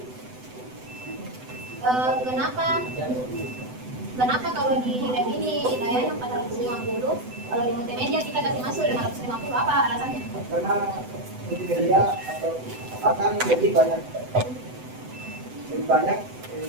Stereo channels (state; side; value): late; left; 8.0 ms